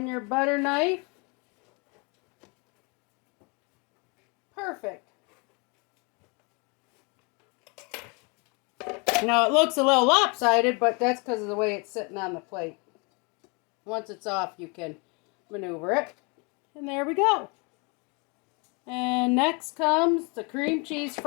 your butter knife. Perfect. Now it looks a little lopsided, but that's because of the way it's sitting on the plate. Once it's off, you can maneuver it. And there we go. And next comes the cream cheese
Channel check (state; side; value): quieter; right; 31.6 dB